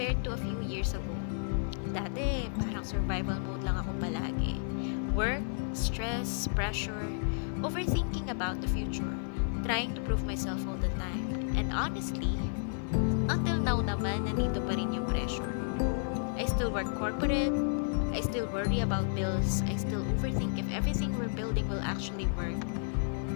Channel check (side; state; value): right; silent; 56 dB below the other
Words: to a few years ago. Dati, parang survival mode lang ako palagi. Work, stress, pressure, overthinking about the future, trying to prove myself all the time. And honestly, until now naman, nandito pa rin yung pressure. I still work corporate, I still worry about bills, I still overthink if everything we're building will actually work.